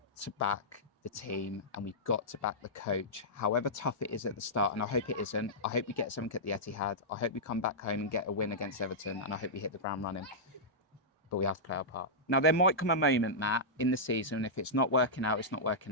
to back the team and we've got to back the coach, however tough it is at the start. And I hope it isn't. I hope we get something at the Etihad. I hope we come back home and get a win against Everton. And I hope we hit the ground running. But we have to play our part. Now, there might come a moment, Matt, in the season, if it's not working out, it's not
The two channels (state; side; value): normal; both; correlation -0.12